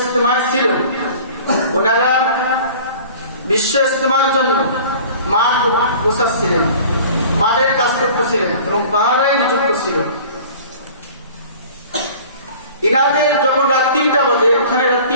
ছিল ওনারা বিশ্ব ইজতেমার জন্য মাঠ গোছাচ্ছিলেন, মাঠের কাজ করতেছিলেন এবং পাহারায় নিযুক্ত ছিল। ইনাদের যখন রাত 3টা বাজে, ওখানে রাত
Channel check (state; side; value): inverted; both; correlation -0.44